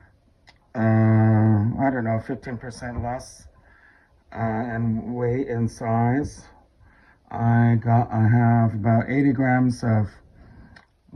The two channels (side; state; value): both; identical; correlation 1.00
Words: I don't know, 15% less in weight and size, I have about 80 grams of